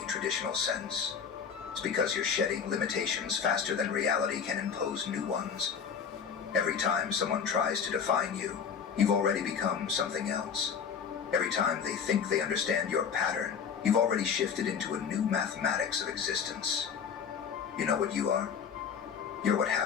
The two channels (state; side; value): quieter; right; 6.9 dB